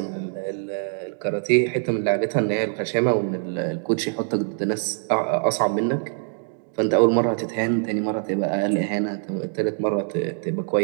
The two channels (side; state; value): left; silent; 61 dB below the other